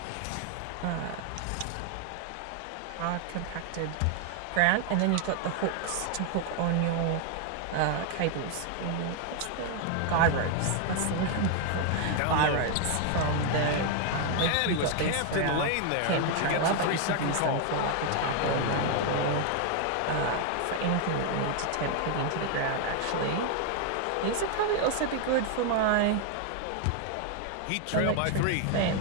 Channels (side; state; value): both; different; correlation 0.00